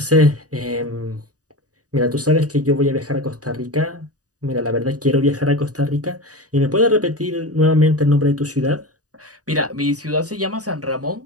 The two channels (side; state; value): left; late; 0.67 ms